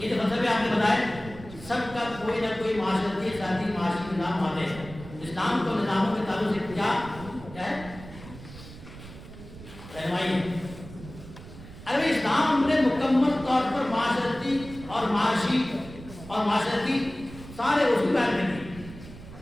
جو مطلب آپ نے بتایا سب کا کوئی نہ کوئی معاشرتی ذاتی معاشی نظام آتے ہیں. اسلام کو نظاموں کے تعلق سے کیا ہے رہنمائی ہے. اگر اسلام نے مکمل طور پر معاشرتی اور معاشی اور معاشرتی سارے اصول بیان کر دیے.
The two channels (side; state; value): right; noise; rumble, 15 dB below the sound